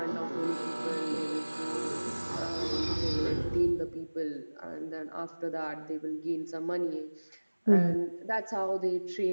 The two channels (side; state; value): both; inverted; correlation -1.00